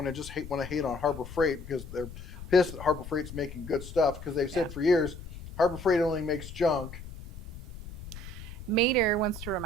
and just want to hate on Harbor Freight because they're pissed that Harbor Freight's making good stuff because they've said for years, Harbor Freight only makes junk. Mater wants to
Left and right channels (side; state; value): left; noise; rumble, 12 dB below the sound